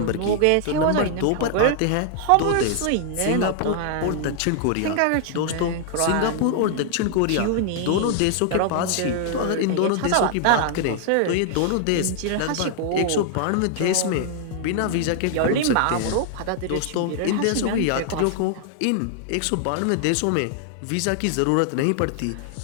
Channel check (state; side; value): different; both; correlation 0.00